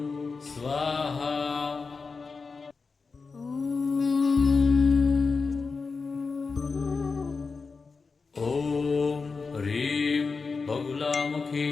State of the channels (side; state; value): right; quieter; 4.6 dB